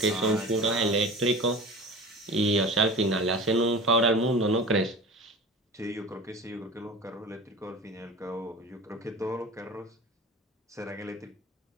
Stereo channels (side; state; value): both; normal; correlation 0.36